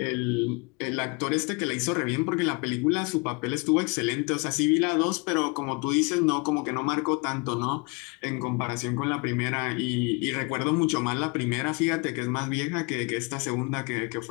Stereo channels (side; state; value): right; quieter; 30.0 dB